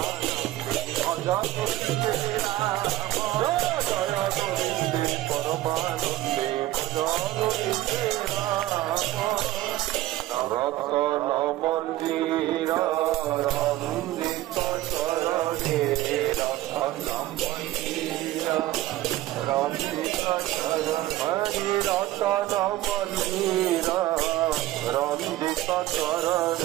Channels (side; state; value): left; quieter; 15.9 dB